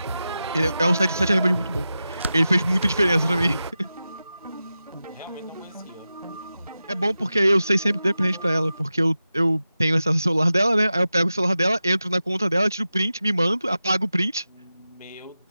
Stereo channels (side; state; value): both; inverted; correlation -0.93